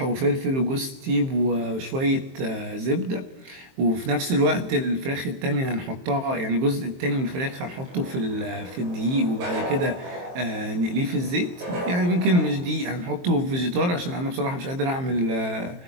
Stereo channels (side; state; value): left; late; 23 ms